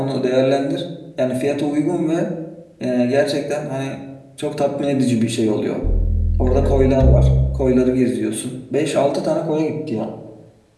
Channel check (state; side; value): identical; both; correlation 1.00